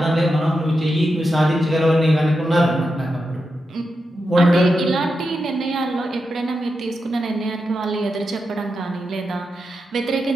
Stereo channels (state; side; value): normal; both; correlation 0.88